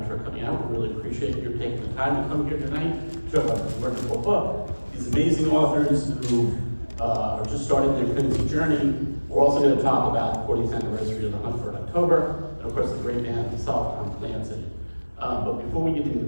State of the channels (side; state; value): both; inverted; correlation -1.00